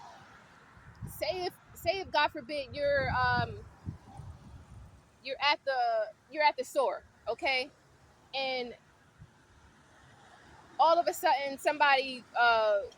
Say if God forbid you're at the store, okay, and all of a sudden somebody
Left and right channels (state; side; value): identical; both; correlation 1.00